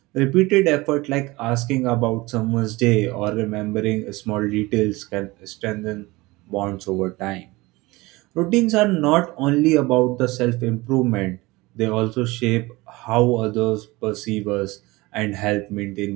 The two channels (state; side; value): quieter; left; 21.7 dB